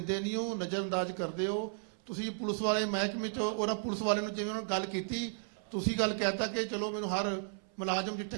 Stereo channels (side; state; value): left; silent; 55 dB below the other